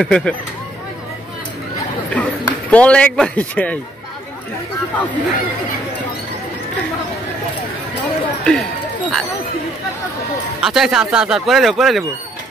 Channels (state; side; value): normal; both; correlation 0.67